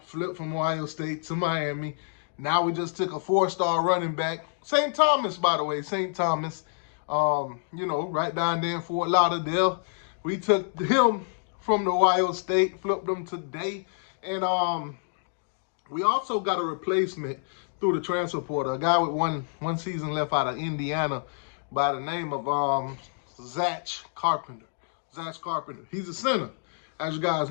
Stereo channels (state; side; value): silent; right; digital silence